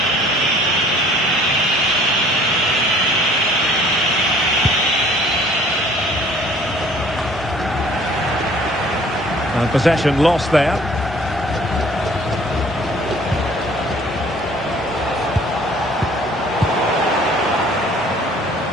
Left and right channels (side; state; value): both; normal; correlation 0.54